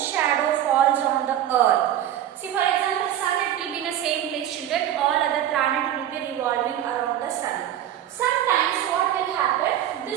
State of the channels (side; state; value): left; quieter; 11.5 dB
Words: shadow falls on the earth. See, for example, sun it will be in the same place, children. All other planets will be revolving around the sun. Sometimes what will happen?